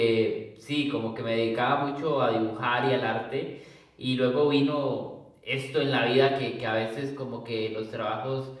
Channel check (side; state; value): both; identical; correlation 1.00